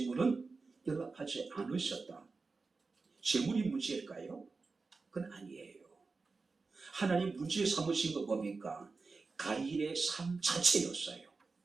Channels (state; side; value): quieter; left; 4.2 dB